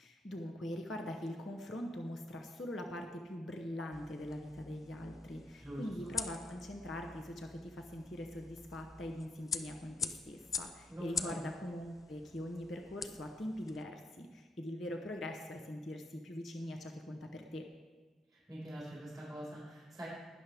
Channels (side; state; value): both; normal; correlation 0.76